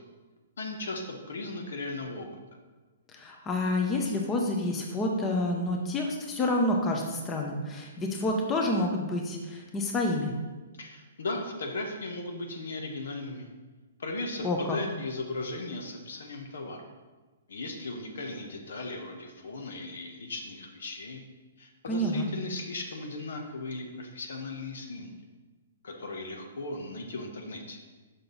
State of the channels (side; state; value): both; normal; correlation -0.12